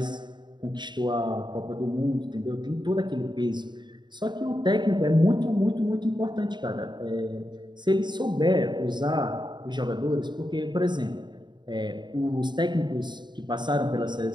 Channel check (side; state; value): left; late; 0.22 ms